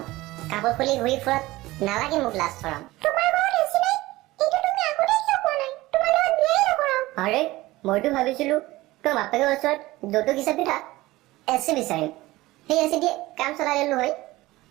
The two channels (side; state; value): left; quieter; 18.7 dB